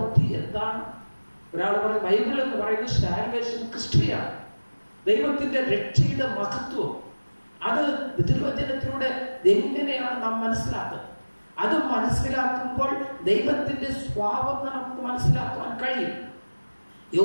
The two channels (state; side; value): inverted; both; correlation -1.00